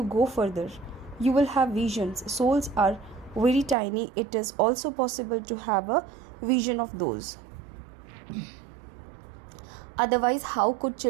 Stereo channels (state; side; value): drops out; left; at 3.8 s